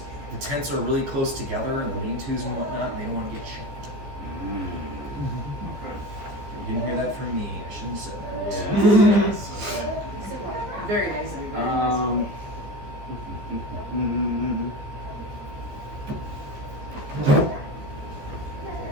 the tents are really close together and the lean-tos and whatnot, and they don't want to get shanked. Okay. You didn't hear that from me. I shouldn't have said that. Yes. Okay. Very nice of you. Very nice of you.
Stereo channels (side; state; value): left; late; 15 ms